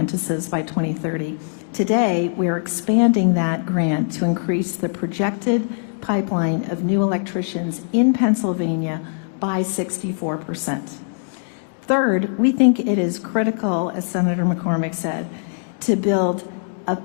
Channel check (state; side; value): silent; right; digital silence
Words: by 2030. Today, we are expanding that grant to increase the projected pipeline of new electricians in Pennsylvania by 64%. Third, we think it is critical, as Senator McCormick said, to build a